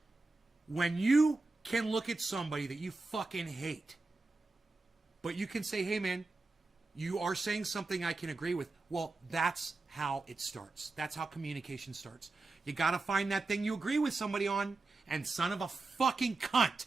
When you can look at somebody that you fucking hate, but you can say, hey man, you are saying something I can agree with. Well, that's how it starts. That's how communication starts. You gotta find that thing you agree with somebody on. And son of a fucking cunt,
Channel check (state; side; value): quieter; left; 3.5 dB